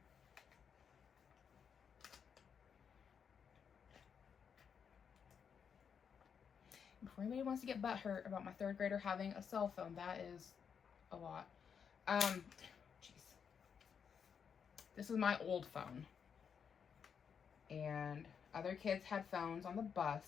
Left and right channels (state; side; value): quieter; right; 7.0 dB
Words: Before anybody wants to get butthurt about my 3rd grader having a cell phone, that is a lot. Jeez. This is my old phone. And other kids had phones on the